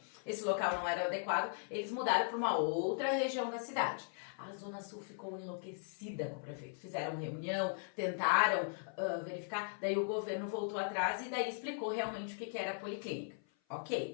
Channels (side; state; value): right; silent; 52 dB below the other